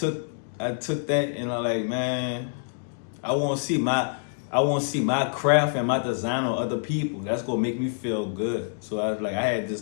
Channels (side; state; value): right; silent; digital silence